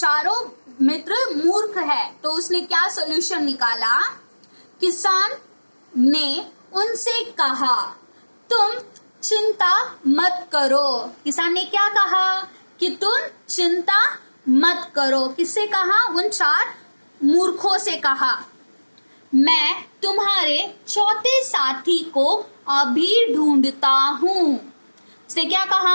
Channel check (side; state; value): both; inverted; correlation -1.00